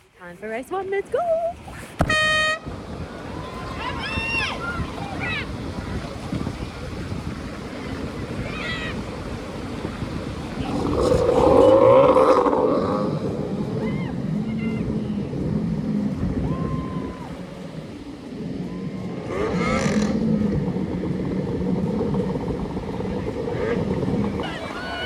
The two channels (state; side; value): identical; both; correlation 1.00